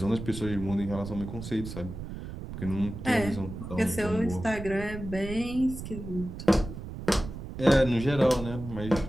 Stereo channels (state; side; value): noise; right; rumble, 9 dB below the sound